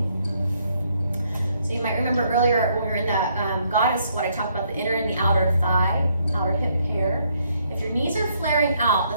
So you might remember earlier when we were in that goddess squat, I talked about the inner and the outer thigh, outer hip pair. If your knees are flaring out,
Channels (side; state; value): both; inverted; correlation -0.71